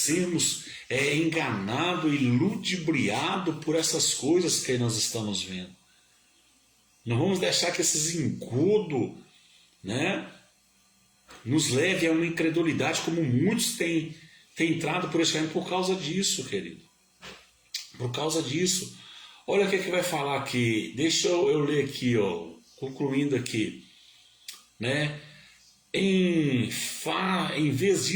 enganados e ludibriados por essas coisas que nós estamos vendo. Não vamos deixar que esses engodos, né, nos leve a uma incredulidade, como muitos têm entrado por esse caminho por causa disso, querido. Por causa disso. Olha o que vai falar aqui. Deixa eu ler aqui, ó, concluindo aqui. Né? Em vez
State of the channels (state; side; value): identical; both; correlation 1.00